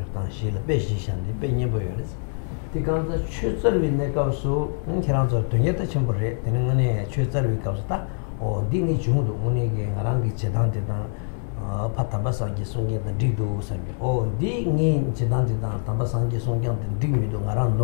on Shila Peshishan, the Penny Boyers. The guns that Chutzer with Nekasu, and Kiranzo Tuneta Chambore, Tenene, Chutzer with Kausta, or Dini Chundu, Unigi, Arangi Chedantidan, Patabasangi Songa, the Digdus, or Dini Chedantidan, Tabasangi Songa, and Digmido, Aran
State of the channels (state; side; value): silent; right; 58 dB below the other